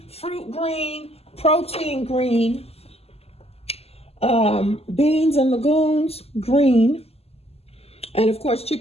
fruit green, protein green, beans and legumes green, and of course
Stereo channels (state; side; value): late; right; 0.29 ms